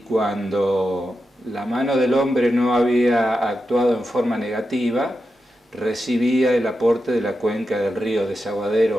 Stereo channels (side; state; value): both; normal; correlation 0.89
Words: la mano del hombre no había actuado en forma negativa, recibía el aporte de la cuenca del río